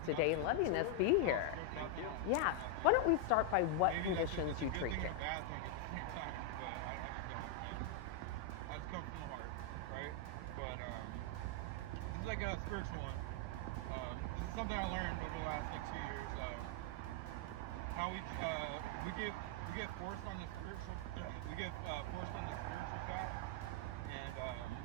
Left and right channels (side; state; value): both; different; correlation 0.00